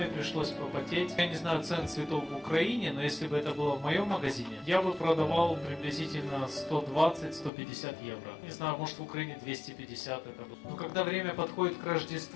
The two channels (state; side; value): drops out; right; at 7.5 s